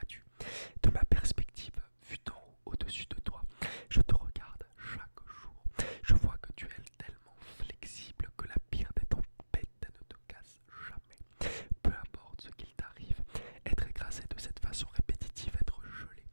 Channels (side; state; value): both; inverted; correlation -1.00